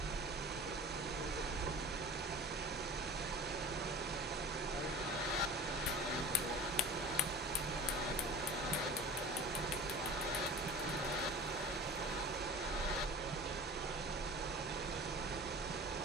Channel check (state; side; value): normal; both; correlation 0.39